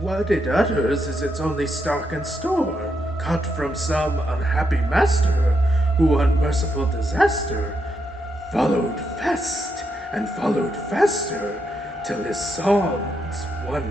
it utters is its only stock and store, caught from some unhappy master, who unmerciful disaster followed fast and followed faster, till his songs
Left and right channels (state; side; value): normal; both; correlation 0.81